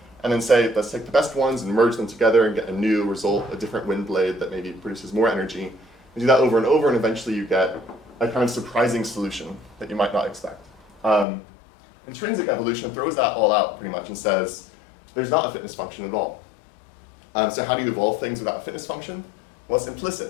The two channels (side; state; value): right; drops out; at 11.2 s